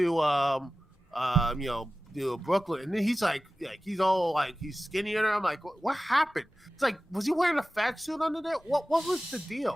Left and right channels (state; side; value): normal; both; correlation 0.96